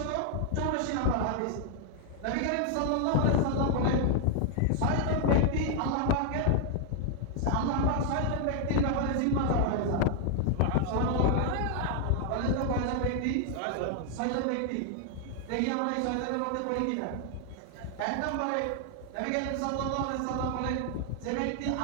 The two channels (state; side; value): different; both; correlation 0.00